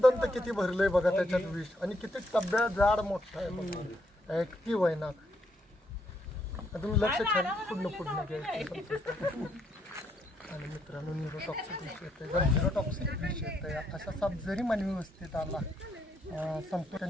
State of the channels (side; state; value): both; normal; correlation 0.75